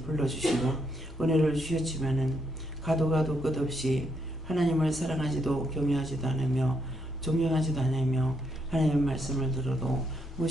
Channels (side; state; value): both; normal; correlation 0.76